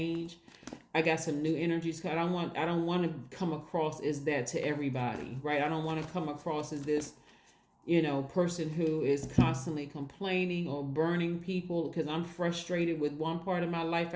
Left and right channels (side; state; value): both; identical; correlation 1.00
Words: I got some new energies. I don't want to come across as that to everybody, right? I don't want to come across as this, person who is constantly complaining or burning people because I'm frustrated with one part of my life.